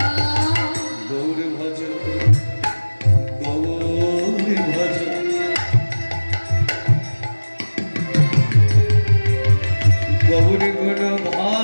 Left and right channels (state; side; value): inverted; both; correlation -1.00